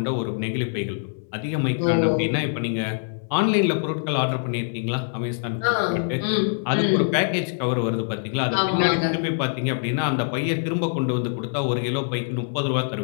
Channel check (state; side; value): silent; right; digital silence